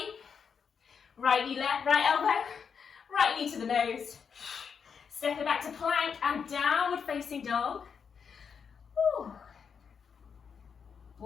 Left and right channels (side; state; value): right; quieter; 6.5 dB